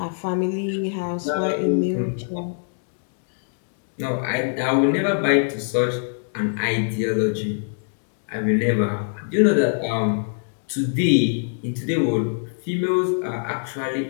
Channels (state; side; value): silent; right; digital silence